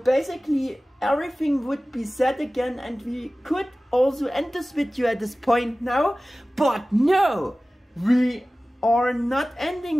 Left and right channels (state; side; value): normal; both; correlation 0.97